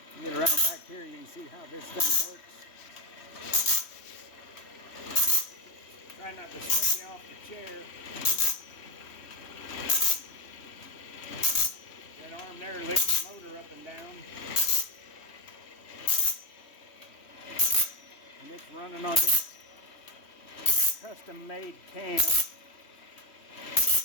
Get around back here, you can see how this thing works. Try not to swing you off the chair. That arm there lifts the motor up and down. And it's running on this custom-made cam.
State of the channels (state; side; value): late; right; 3.1 ms